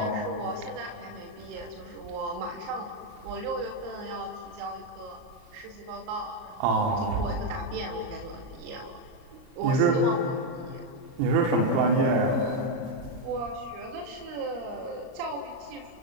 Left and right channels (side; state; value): left; late; 38 ms